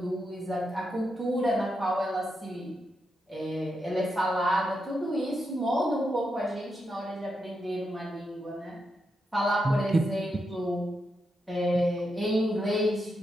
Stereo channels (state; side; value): normal; both; correlation 0.84